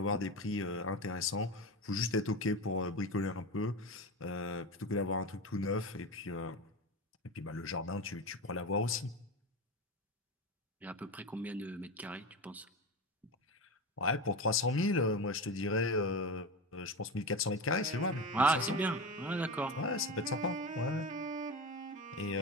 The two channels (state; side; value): normal; both; correlation 0.23